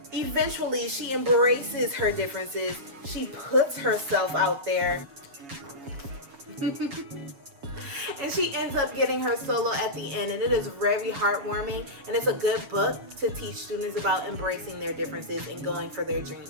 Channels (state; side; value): late; left; 7.3 ms